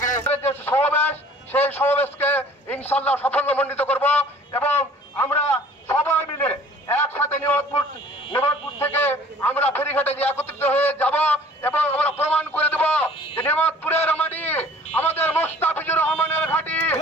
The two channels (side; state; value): both; normal; correlation 0.51